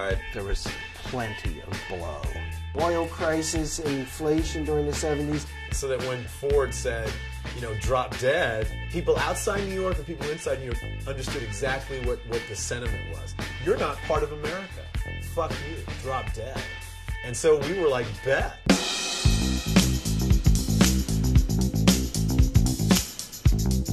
There was plenty of blow. Oil crisis, inflation during the 70s. So that when Ford said, you know, drop dead, people outside New York and people inside New York understood exactly what the sentiment was. You're not part of America. Fuck you, drop dead. And so we were like, bet.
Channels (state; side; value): identical; both; correlation 1.00